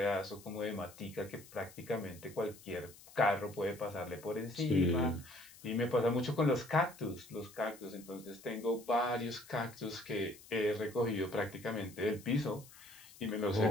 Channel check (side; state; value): left; noise; hiss, 20 dB below the sound